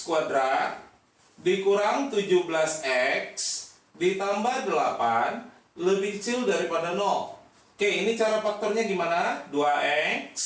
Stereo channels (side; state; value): both; identical; correlation 1.00